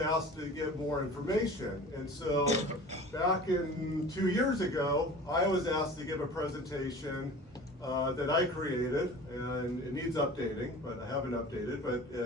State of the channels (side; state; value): both; normal; correlation 0.40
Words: asked to get more information. And so back in 2 years ago, I was asked to give a presentation that I created, and it needs updating, but I haven't updated, but